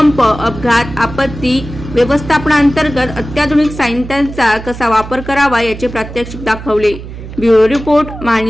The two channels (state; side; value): noise; right; hum, 12 dB below the sound